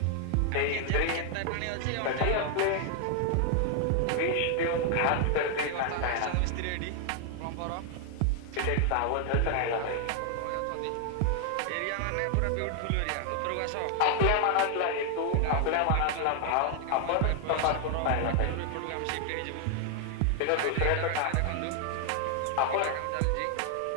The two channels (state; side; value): different; both; correlation 0.00